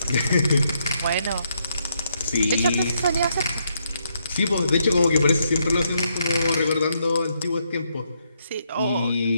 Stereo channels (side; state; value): both; inverted; correlation -0.77